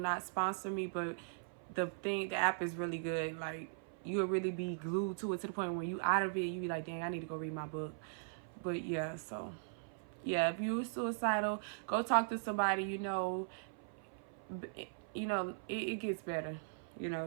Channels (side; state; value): left; silent; 52 dB below the other